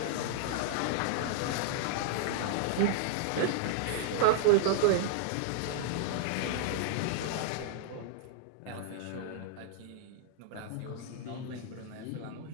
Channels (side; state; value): both; different; correlation -0.01